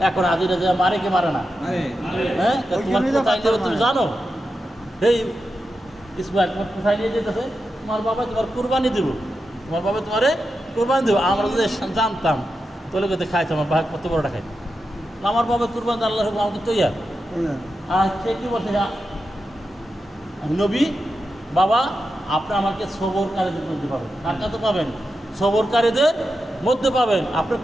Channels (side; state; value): both; normal; correlation 0.89